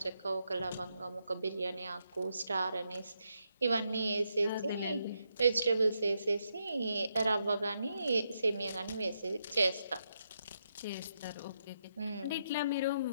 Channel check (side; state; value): both; inverted; correlation -0.81